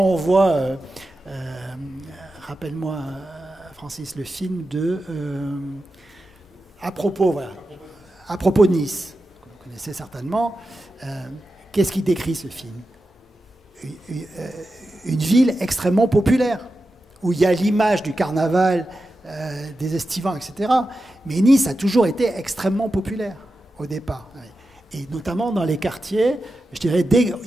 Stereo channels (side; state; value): both; normal; correlation 0.91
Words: voit, rappelle-moi, Francis, le film de... à propos de Nice, que vous connaissez certainement, qu'est-ce qui décrit ce film ? Une ville extrêmement populaire, où il y a l'image du carnaval, des estivants, etc. Mais Nice a toujours été extrêmement populaire au départ. Et notamment dans les quartiers, je dirais,